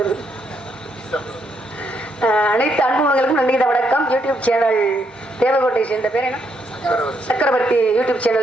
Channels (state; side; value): normal; both; correlation 0.76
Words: அனைத்து அன்புகளுக்கும் நன்றி இந்த வணக்கம். யூடியூப் சேனல் தேவகோட்டை சேர்ந்த பேர் என்ன, சக்கரவர்த்தி யூடியூப்